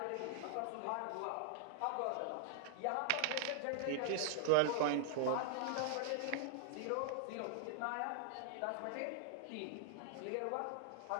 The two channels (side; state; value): both; different; correlation -0.01